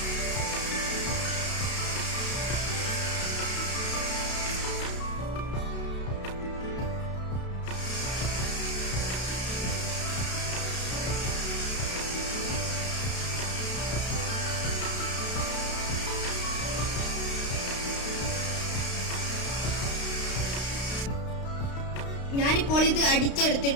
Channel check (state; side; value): late; right; 32 ms